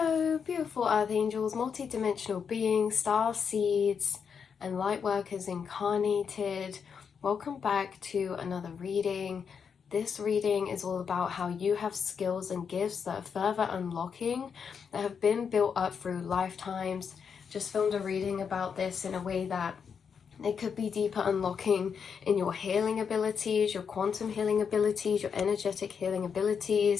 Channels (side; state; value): right; quieter; 6.6 dB